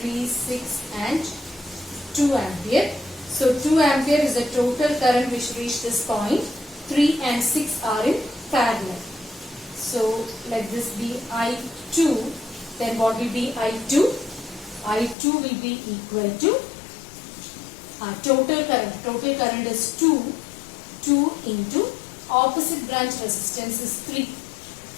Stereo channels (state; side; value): drops out; right; at 15.2 s